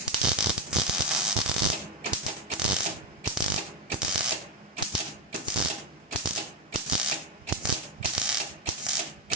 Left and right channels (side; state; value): both; normal; correlation 0.13